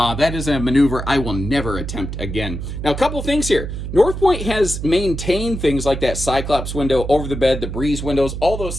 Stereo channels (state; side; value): noise; right; hum, 6 dB below the sound